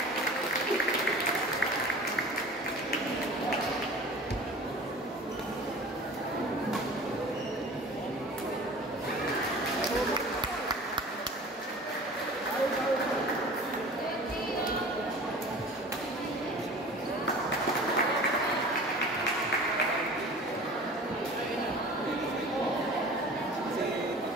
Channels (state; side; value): normal; both; correlation 0.41